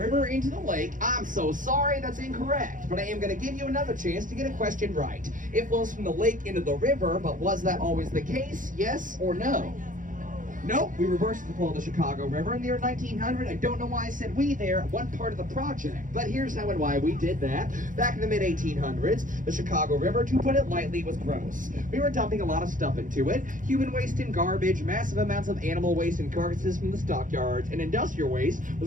into the lake, I'm so sorry, that's incorrect. But I am going to give you another chance to get a question right. It flows from the lake into the river, but was that always the case? Yes or no? Nope, we reversed the flow of the Chicago River in the year 1900. I don't know why I said we there at one part of the project, but here's how and why we did that. Back in the mid-1800s, the Chicago River, to put it lightly, was gross. We were dumping a lot of stuff into it. Human waste and garbage, massive amounts of animal waste and carcasses from the stockyards, and industrial waste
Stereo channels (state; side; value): late; left; 0.38 ms